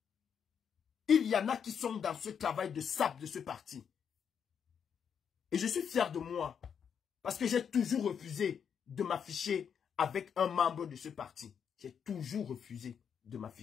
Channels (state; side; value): quieter; right; 7.5 dB